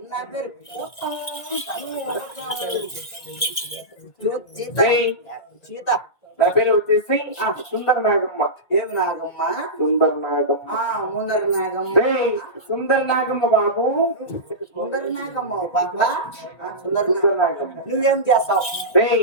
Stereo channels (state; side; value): late; right; 1.8 ms